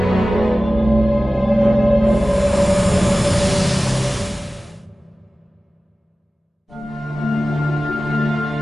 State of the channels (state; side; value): normal; both; correlation 0.96